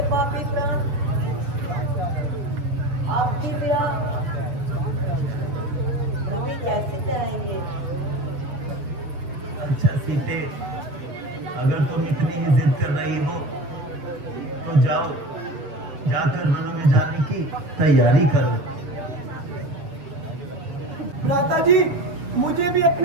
पापी प्राण आपकी विरह कभी कैसे जाएंगे? अच्छा सीते, अगर तुम इतनी ही जिद कर रही हो तो जाओ, जाकर वनों में जाने की तैयारी करो। माता जी, मुझे भी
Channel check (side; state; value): left; late; 7.3 ms